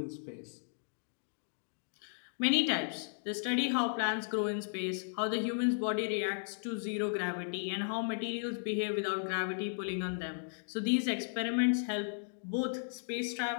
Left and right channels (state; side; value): silent; right; digital silence